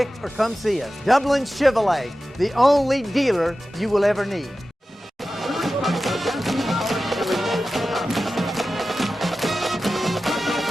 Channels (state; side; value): normal; both; correlation 0.94